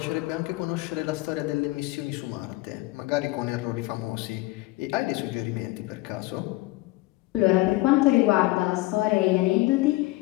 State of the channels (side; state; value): right; quieter; 20.2 dB